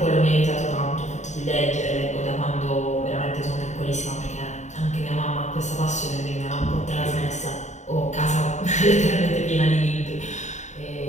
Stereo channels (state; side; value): late; right; 0.34 ms